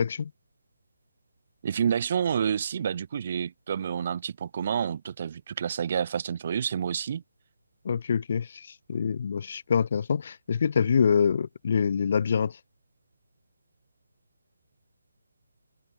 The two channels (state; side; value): inverted; both; correlation -0.77